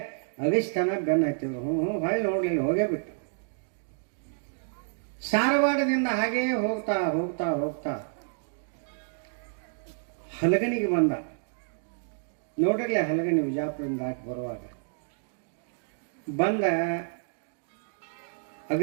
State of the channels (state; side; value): silent; left; digital silence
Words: ಅಗಿಸ್ತಾನ ಬೆನ್ನ ಹತ್ತಿದ್ರು. ಹೊಳ್ಳಿ ನೋಡ್ಲಿಲ್ಲ, ಹೋಗೇ ಬಿಟ್ಟು. ಸಾರವಾಡದಿಂದ ಹಾಗೇ ಹೋಗ್ತಾ ಹೋಗ್ತಾ ಹೋಗ್ತಾ ಹಲಗನಿಗೆ ಬಂದ. ನೋಡಿರ್ಲಿ ಹಲಗನಿ ವಿಜಾಪುರದಿಂದ ದಾಟಿ ಬರುವಾಗ ಬಂದ.